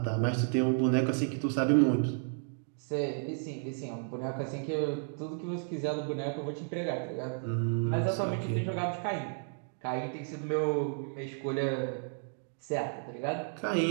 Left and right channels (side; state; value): left; silent; 56 dB below the other